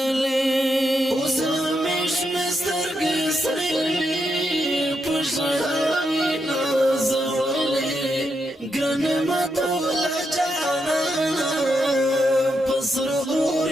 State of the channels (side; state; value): both; normal; correlation 0.82